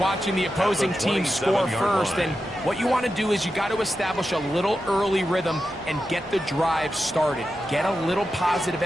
the opposing team score first, and what you want to do is you got to establish a little early rhythm and get the drive started. Get a little positive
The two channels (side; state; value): both; normal; correlation 0.90